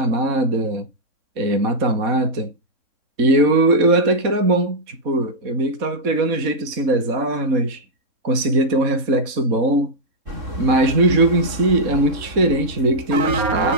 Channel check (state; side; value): late; left; 4.1 ms